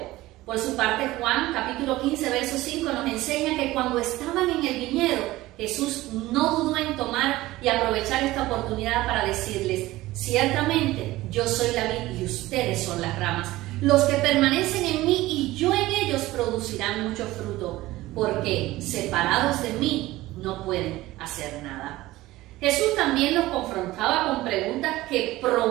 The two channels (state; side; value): quieter; left; 17.7 dB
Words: por su parte, Juan capítulo 15 verso 5 nos enseña que cuando estaban en el viñedo, Jesús no dudó en tomar y aprovechar esta oportunidad para decirles: ciertamente yo soy la vid y ustedes son las ramas. Los que permanecen en mí y yo en ellos producirán mucho fruto, porque separados de mí no pueden hacer nada. Jesús también los confrontaba con preguntas que